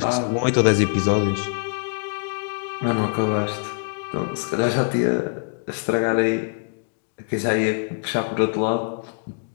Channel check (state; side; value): silent; right; digital silence